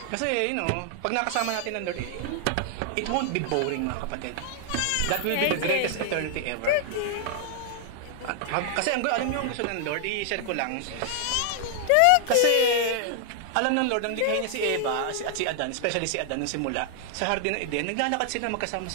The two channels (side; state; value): both; different; correlation 0.00